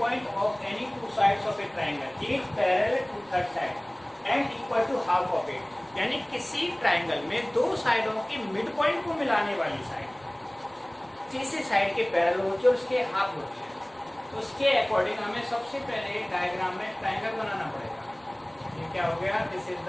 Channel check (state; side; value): noise; right; rumble, 30 dB below the sound